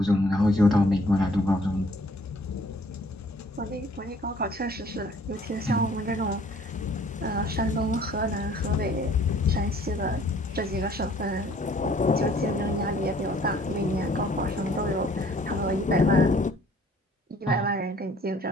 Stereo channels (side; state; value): both; normal; correlation 0.57